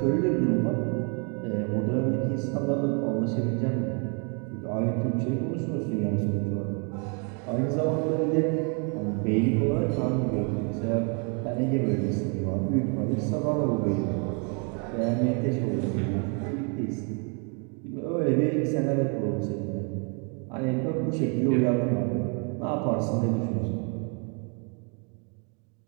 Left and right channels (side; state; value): left; quieter; 37.1 dB